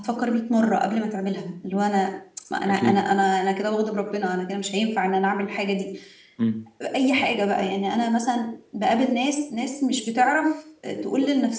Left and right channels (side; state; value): both; identical; correlation 1.00